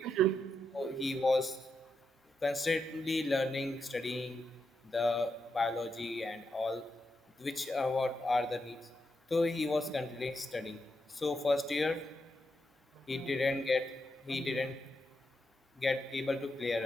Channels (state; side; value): normal; both; correlation 0.84